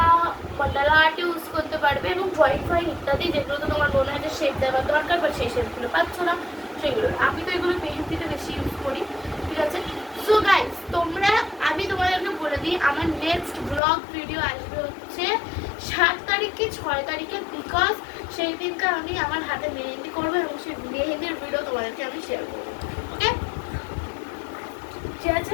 মন্ডালা আর্টে ইউজ করতে পারবে, এবং ড্রয়িং ফ্রয়িং ইত্যাদি, যেগুলো তো তোমার মনে হয় যে শেপ দেওয়ার দরকার, বাট সেই শেপগুলো পাচ্ছ না সেগুলো। আমি তো এগুলো মেহেন্দিতে বেশি ইউজ করি, ঠিক আছে। সো গাইস, আমি তোমাদেরকে বলে দিই, আমার নেক্সট ব্লগ ভিডিও আসবে হচ্ছে 7 তারিখে 6 তারিখে, বিকজ সেই দিনকে আমি আমার হাতে মেহেন্দি করবো এবং সেই মেহেন্দির ভিডিও তোমাদেরকে আমি শেয়ার করবো, ওকে, ঠিক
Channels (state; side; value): drops out; right; at 13.8 s